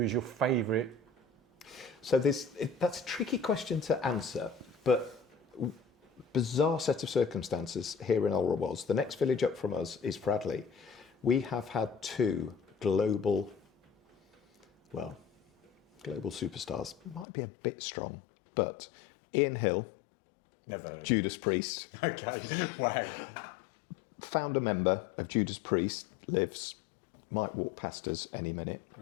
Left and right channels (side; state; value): right; drops out; at 17.2 s